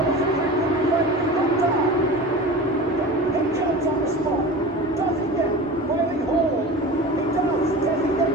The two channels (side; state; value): both; normal; correlation 0.34